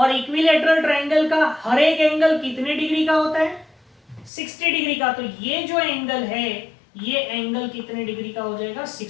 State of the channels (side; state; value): right; drops out; at 4.3 s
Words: इक्विलैटरल ट्रायंगल का हर एक एंगल कितने डिग्री का होता है 60 डिग्री का। तो ये जो एंगल है ये एंगल कितने डिग्री का हो जाएगा